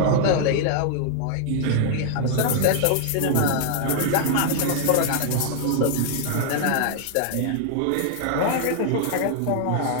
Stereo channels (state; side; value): different; both; correlation -0.01